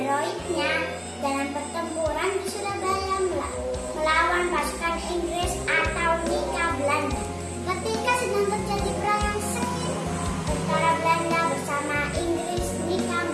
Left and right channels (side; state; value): both; identical; correlation 1.00